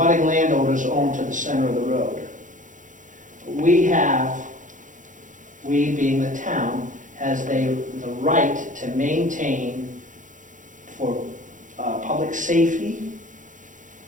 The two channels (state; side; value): late; left; 0.37 ms